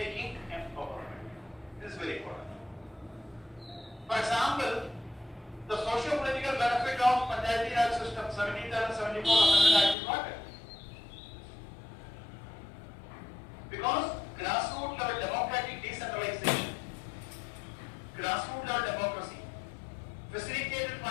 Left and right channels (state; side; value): drops out; right; at 10.0 s